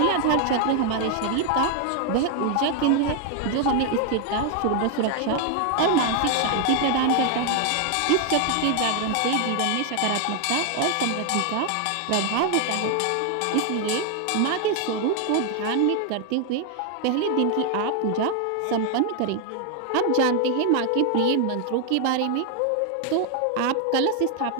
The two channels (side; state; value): both; different; correlation 0.00